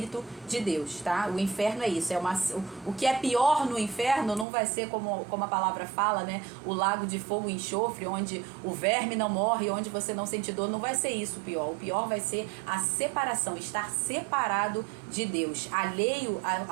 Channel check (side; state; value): left; drops out; at 4.5 s